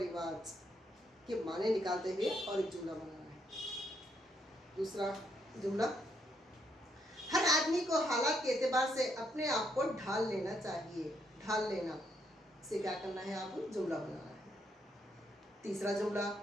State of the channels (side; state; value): both; normal; correlation 0.75